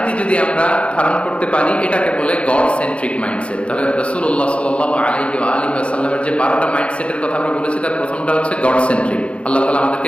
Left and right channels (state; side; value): late; right; 0.060 ms